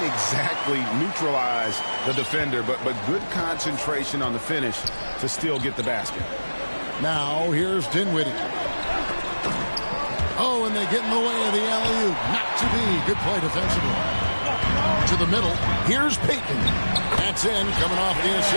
exactly neutralize the defender, but good concentration on the finish to still get the basket. Now here's Dinwiddie. Oh, and they get in the way of the alley-oop. Not to be. Good play defensively. To the middle. Here's Payton. That's in, coming off the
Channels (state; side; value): inverted; both; correlation -1.00